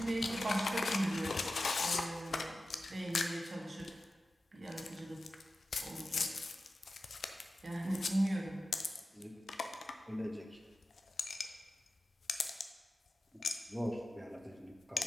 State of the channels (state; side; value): normal; both; correlation 0.93